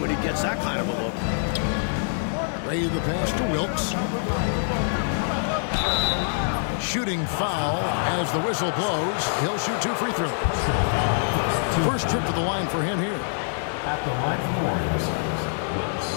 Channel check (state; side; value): silent; right; 62 dB below the other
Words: he gets that kind of a look. Ray the pass to Wilkes. Shooting foul as the whistle blows. He'll shoot 2 free throws. First trip to the line for him here. At the line for the Warriors, Wilkes